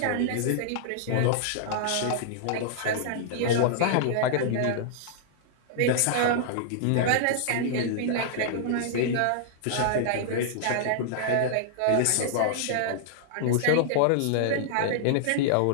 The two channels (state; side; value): different; both; correlation -0.01